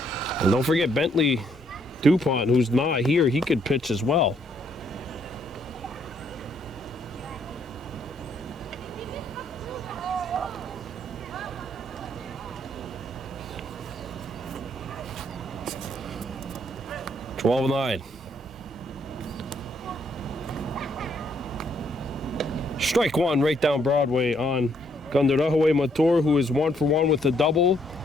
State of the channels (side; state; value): both; normal; correlation 0.70